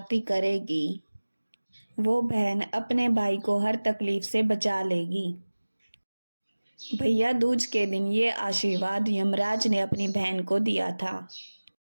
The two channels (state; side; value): inverted; both; correlation -1.00